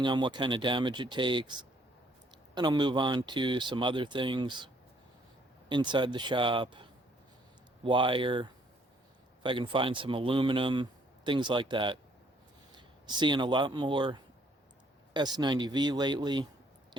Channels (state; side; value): normal; both; correlation 0.65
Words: on what kind of damage it takes. And I'll move on to some other things inside the shop, wire, if I can find some aluminum, things like that. Seeing a lot more S90V lately,